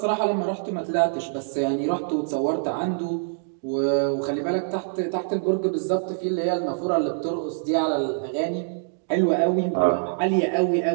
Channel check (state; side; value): silent; left; digital silence